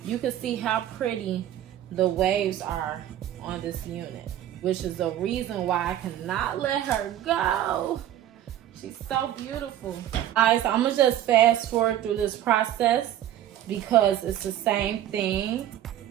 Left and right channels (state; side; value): quieter; left; 12.0 dB